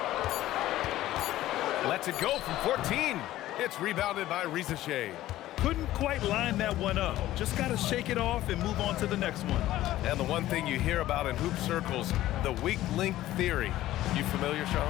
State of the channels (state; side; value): quieter; right; 14.8 dB